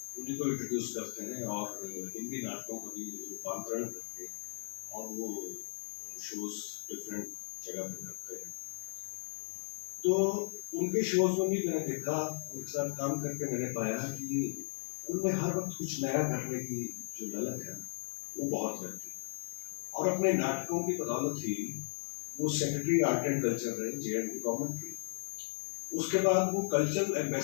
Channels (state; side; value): silent; right; 54 dB below the other